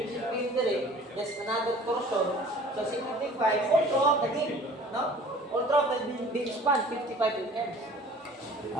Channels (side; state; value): both; normal; correlation 0.48